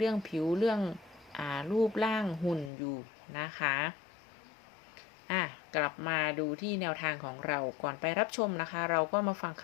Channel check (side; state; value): right; drops out; at 2.7 s